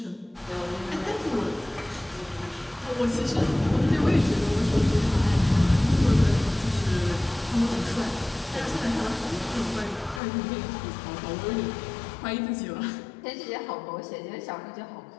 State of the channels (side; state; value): right; drops out; at 10.2 s